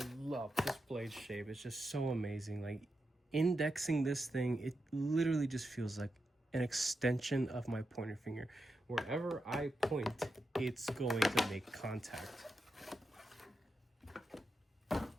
love this blade shape. It's just so amazing. Like, indexing this thing, it literally just feels like an extension of my pointer finger. Wherever I point, it's going to make contact.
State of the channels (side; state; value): both; normal; correlation 0.87